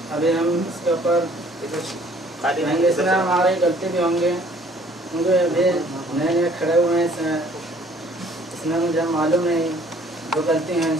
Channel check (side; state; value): both; normal; correlation 0.57